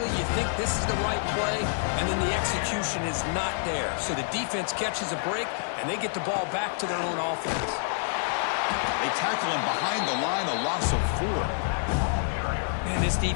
you think this is the right play, and then the execution is not there. So the defense catches a break, and they get the ball back to their own offense. They tackle him behind the line, a loss of 4. Man, this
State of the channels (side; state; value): right; silent; digital silence